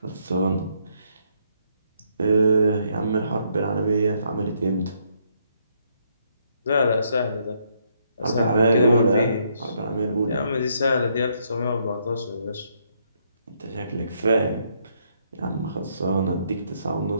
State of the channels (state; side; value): inverted; both; correlation -0.73